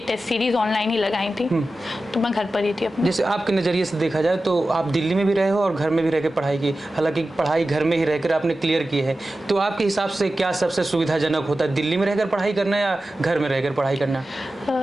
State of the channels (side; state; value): both; normal; correlation 0.94